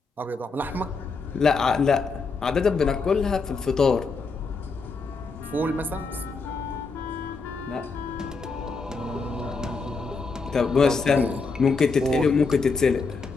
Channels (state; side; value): quieter; right; 4.4 dB